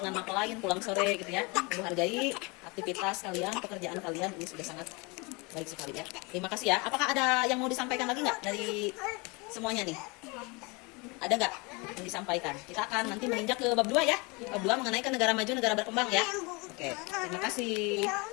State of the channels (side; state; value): right; quieter; 27.9 dB